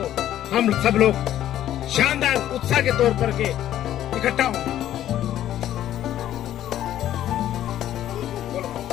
हम सब लोग शानदार उत्साह के तौर पर के इकट्ठा हों।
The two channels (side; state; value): right; quieter; 12.1 dB